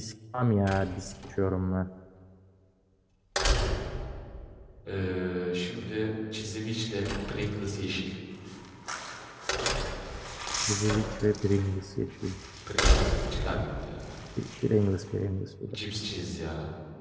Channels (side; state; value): both; identical; correlation 1.00